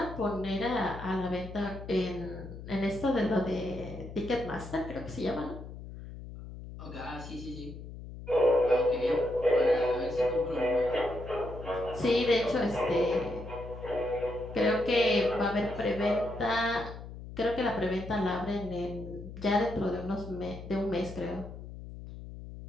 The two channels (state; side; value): noise; left; hum, 12 dB below the sound